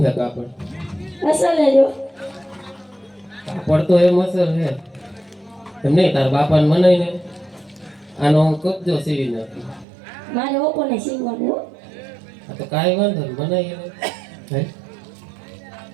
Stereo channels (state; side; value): drops out; left; at 9.9 s